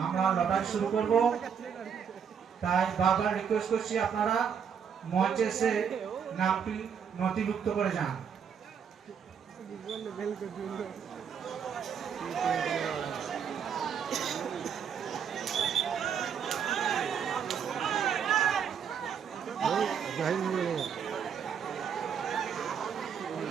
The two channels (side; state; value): left; quieter; 7.4 dB